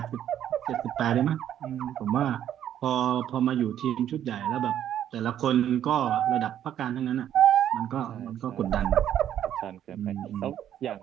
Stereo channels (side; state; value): left; quieter; 10.6 dB